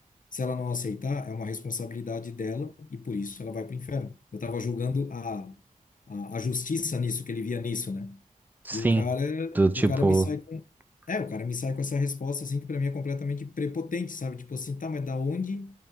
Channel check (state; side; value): normal; both; correlation 0.79